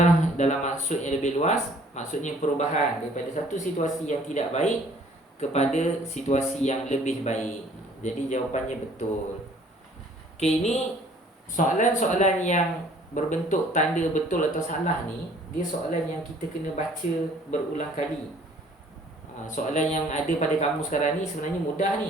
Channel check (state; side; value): normal; both; correlation 0.56